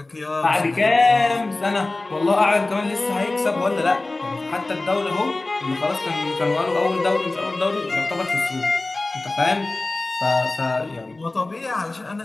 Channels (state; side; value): quieter; right; 3.0 dB